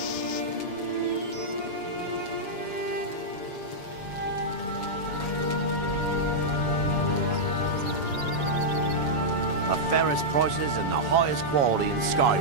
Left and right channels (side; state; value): right; late; 7.1 ms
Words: The fairest prices and the highest quality in